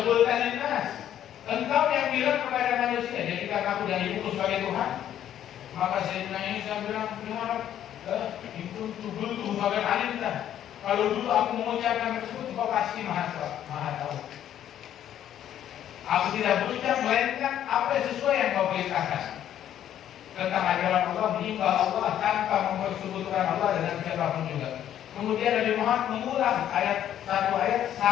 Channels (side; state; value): right; quieter; 10.8 dB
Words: qulta linnas, engkau yang bilang kepada manusia, jadikan aku dan ibuku sebagai Tuhan. Maka Sayyidina Isa bilang, itu tubuh bagian alimta. Kalau dulu aku mengucapkan tersebut, kau pasti maha tahu. Aku tidak berucap melainkan apa sesuai yang kau perintahkan tentang ajaran Allah, menyembah Allah tanpa mempersekutukan Allah dengan siapapun juga. Kemudian Nabi Muhammad mengulang satu ayat